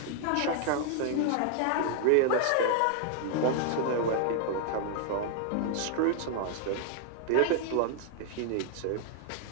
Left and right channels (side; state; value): both; different; correlation 0.00